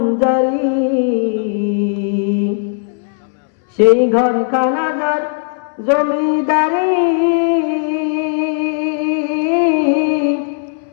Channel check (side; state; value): right; silent; 66 dB below the other